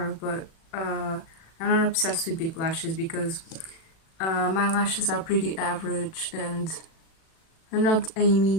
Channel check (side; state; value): right; late; 37 ms